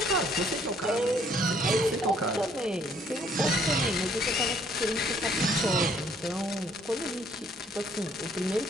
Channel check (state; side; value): normal; both; correlation 0.63